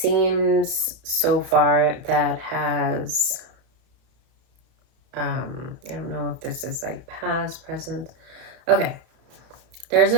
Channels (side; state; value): left; late; 31 ms